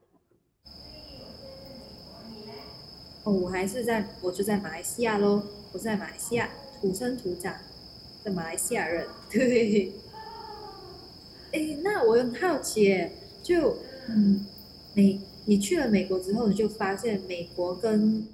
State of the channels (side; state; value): both; identical; correlation 1.00